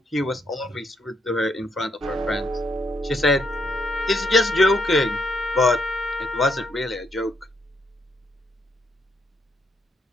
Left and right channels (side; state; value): both; normal; correlation 0.75